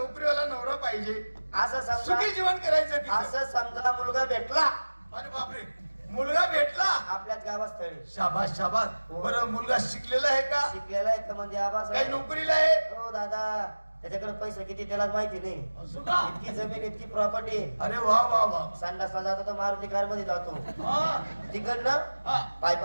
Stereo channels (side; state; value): both; inverted; correlation -1.00